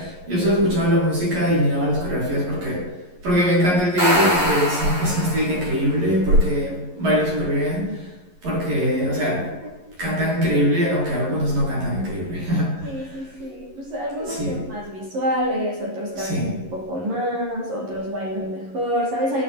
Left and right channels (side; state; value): left; late; 11 ms